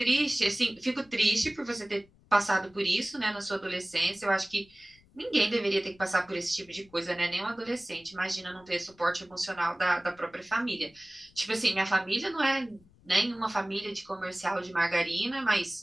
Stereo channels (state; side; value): noise; left; rumble, 29 dB below the sound